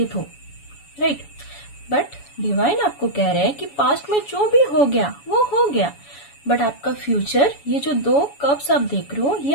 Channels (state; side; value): late; right; 7.1 ms